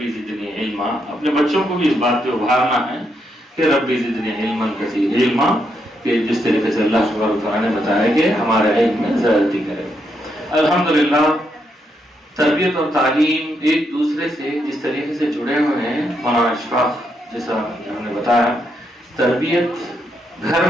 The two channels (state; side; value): normal; both; correlation 0.79